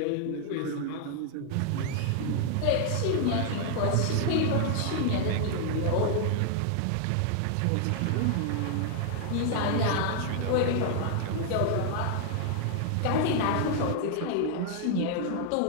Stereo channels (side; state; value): both; different; correlation 0.00